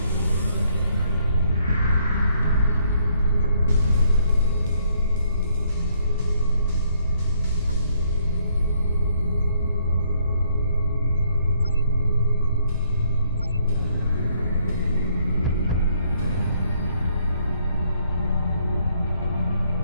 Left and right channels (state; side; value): inverted; both; correlation -0.68